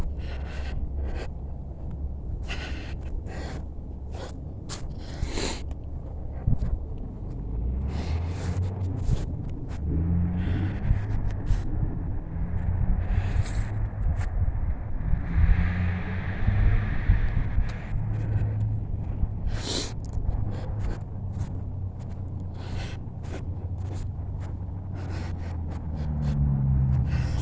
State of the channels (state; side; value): identical; both; correlation 1.00